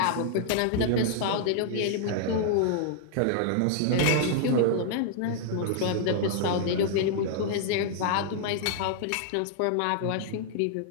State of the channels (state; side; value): different; both; correlation -0.01